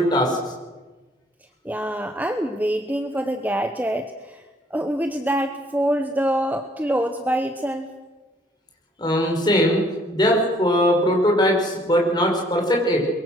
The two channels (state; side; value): normal; both; correlation 0.62